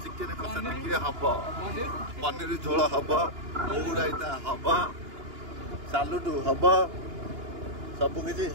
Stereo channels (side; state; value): left; late; 2.9 ms